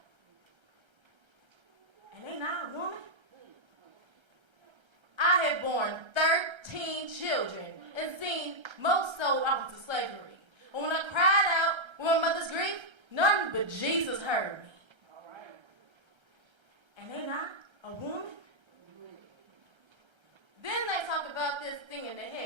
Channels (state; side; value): late; left; 1.3 ms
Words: And ain't I a woman? I have borne 13 children and seen most sold off into slavery. And when I cried out with my mother's grief, none but Jesus heard me. And ain't I a woman? Then they talk about this thing in the